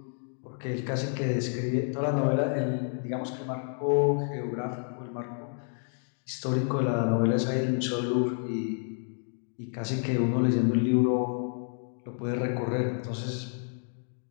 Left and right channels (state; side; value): silent; right; 56 dB below the other